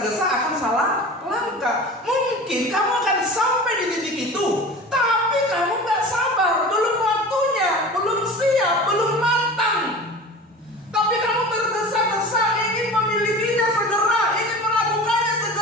akan salah langkah. Mungkin kamu akan sampai di titik itu, tapi kamu nggak sabar, belum waktunya, belum siap, belum matang. Tapi kamu tergesa-gesa ingin memilikinya segera, ingin melakukannya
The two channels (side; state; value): both; normal; correlation 0.36